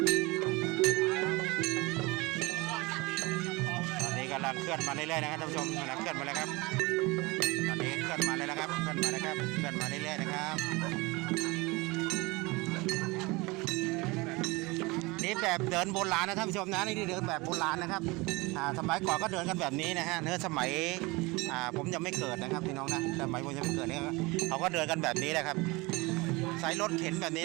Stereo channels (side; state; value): left; quieter; 24.1 dB